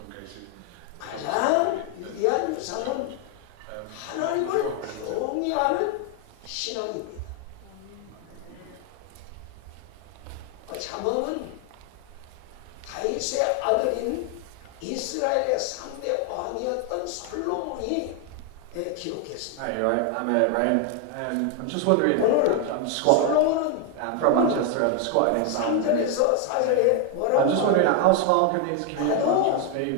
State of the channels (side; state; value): both; different; correlation 0.01